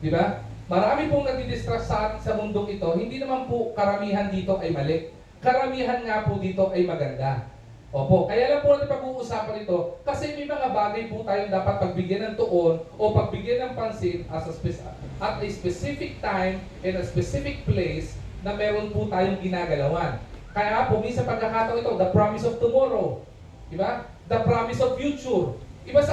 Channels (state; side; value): identical; both; correlation 1.00